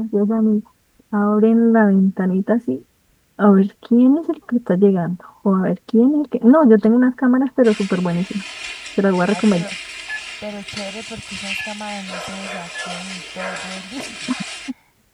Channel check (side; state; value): both; identical; correlation 1.00